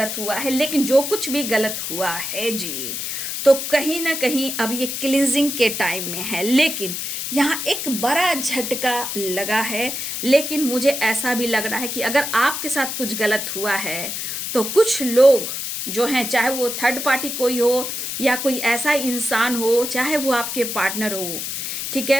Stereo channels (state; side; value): noise; left; hiss, 4 dB below the sound